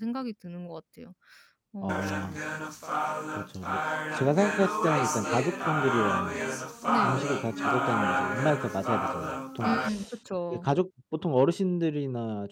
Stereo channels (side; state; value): both; identical; correlation 1.00